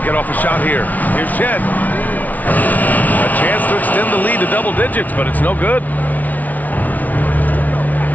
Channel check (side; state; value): right; late; 0.075 ms